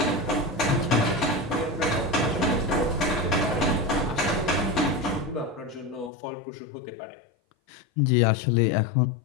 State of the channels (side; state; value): right; drops out; at 6.1 s